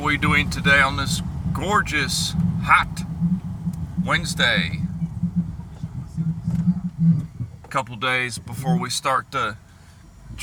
we doing today on this gorgeous, hot Wednesday? A couple days before we start the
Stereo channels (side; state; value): both; identical; correlation 1.00